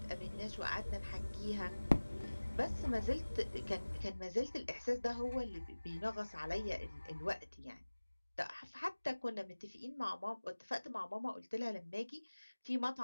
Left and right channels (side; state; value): both; inverted; correlation -1.00